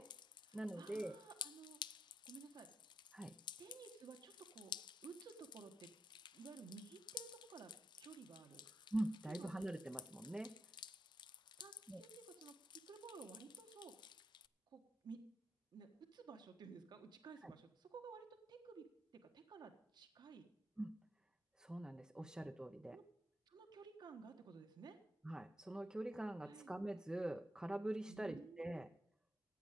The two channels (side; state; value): both; normal; correlation 0.84